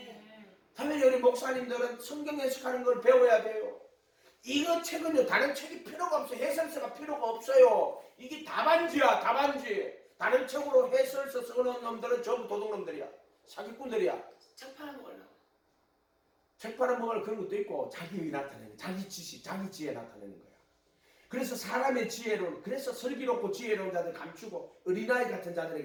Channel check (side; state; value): both; identical; correlation 1.00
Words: 당연히 우리 목사님들은 성경 해석하는 걸 배워야 돼요. 이거 책은요 다른 책이 필요가 없어요. 해설서가 필요가 없어요. 이게 답안지야. 답안지. 다른 책으로 해설서 쓰는 놈들은 전부 도둑놈들이야. 사기꾼들이야. 책 팔아먹으려고. 책 팔아먹을 그런 것도 있고 자기의 나타내는 자기 지식, 자기 지혜 나타내는 거야. 그래서 사람의 지혜로운 그래서 슬기롭고 지혜로운 자들 감추고 어린아이 같은